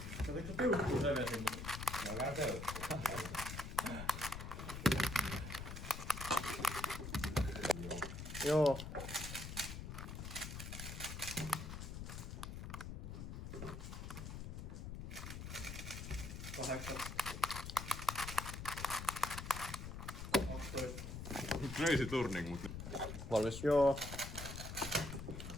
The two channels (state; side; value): noise; left; rumble, 7 dB below the sound